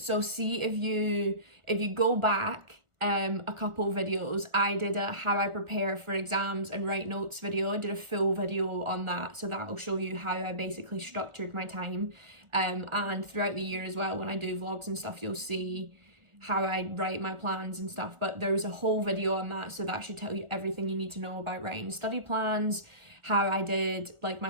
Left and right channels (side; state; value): left; late; 1.4 ms